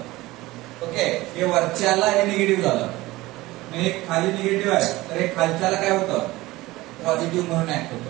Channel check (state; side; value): quieter; left; 19.0 dB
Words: ओके. हे वरच्याला हे निगेटिव्ह झालं. हे खाली निगेटिव्ह आहे, तर हे खालच्याला काय होतं? पॉझिटिव्ह म्हणून ऍक्ट होतं.